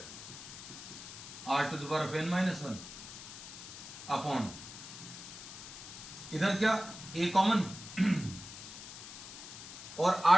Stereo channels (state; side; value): noise; left; hiss, 12 dB below the sound